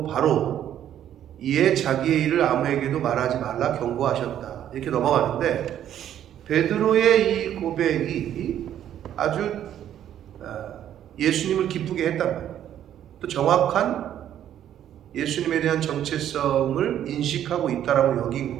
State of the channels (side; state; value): left; quieter; 10.8 dB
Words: 바로 이에 자기의 일을 아무에게도 말하지 말라 경고하셨다 이렇게 넘어가는데, 베드로의 이 고백이 아주 예수님을 기쁘게 했단 말이에요. 또 정확한 예수님에 대한 정체성을 인식하고 있다라고